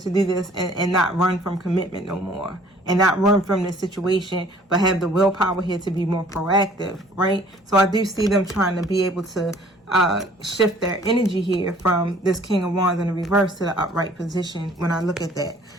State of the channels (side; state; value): both; normal; correlation 0.55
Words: do this and not run from commitment no more, and not run from this situation, but have the willpower here to be more proactive, right? So I do see them trying to be able to shift their energy here from this King of Wands in the reverse to the upright position when I look at that.